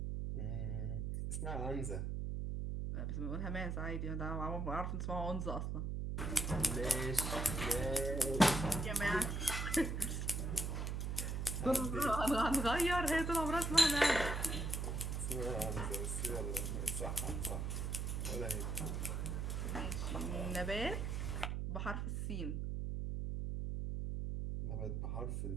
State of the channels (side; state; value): right; noise; hum, 1 dB below the sound